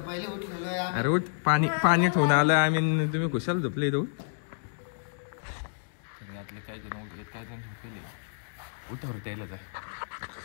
उठलेलो आहे। अरे उठ, पाणी ठेवून आलं आम्ही, तुम्ही खुशाल झोपले इथं। उठ। यातले काही जण उठलेत, काही जण झोपले। उठावर द्यायला जा।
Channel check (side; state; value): right; silent; digital silence